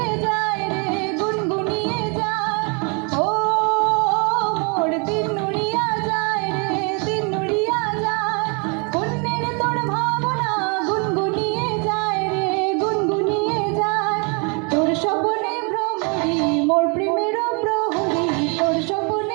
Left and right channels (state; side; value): quieter; left; 34.2 dB